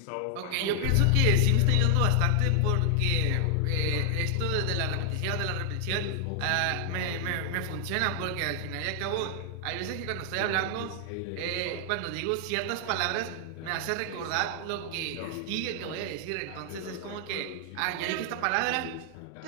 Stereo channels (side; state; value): both; different; correlation 0.00